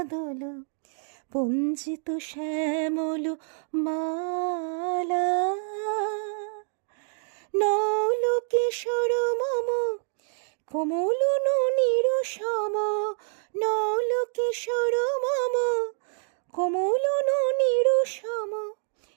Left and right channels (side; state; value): left; silent; digital silence